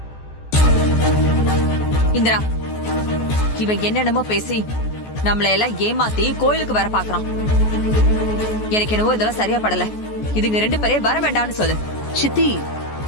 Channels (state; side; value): late; right; 14 ms